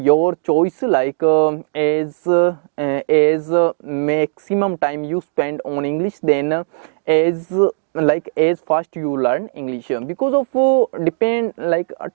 choice, as maximum time you spend on English, then as fast you learn English. Because of depend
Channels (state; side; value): silent; left; digital silence